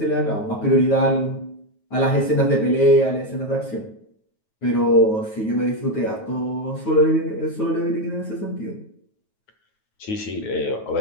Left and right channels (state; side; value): late; right; 9.3 ms